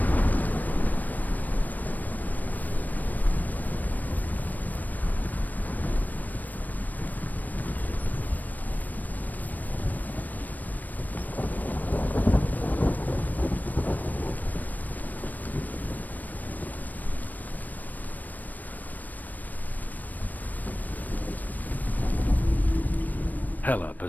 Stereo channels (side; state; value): right; late; 0.083 ms